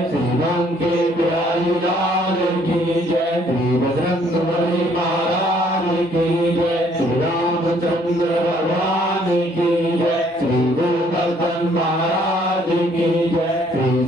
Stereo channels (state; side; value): normal; both; correlation 0.63